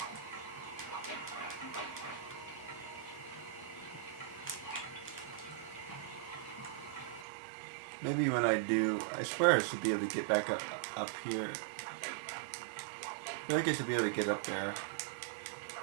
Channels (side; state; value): left; drops out; at 7.2 s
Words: Maybe when I do, I swear I should be able to get back up here. I feel like I should be able to get up there.